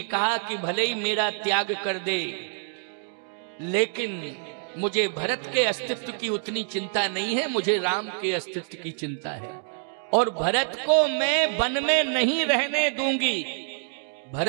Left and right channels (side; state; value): left; silent; 61 dB below the other